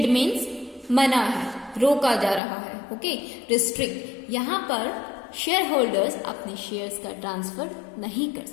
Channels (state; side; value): drops out; right; at 2.4 s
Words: means मना है, रोका जा रहा है। ओके, रिस्ट्रिक्ट, यहाँ पर शेयर होल्डर्स अपने शेयर्स का ट्रांसफर नहीं कर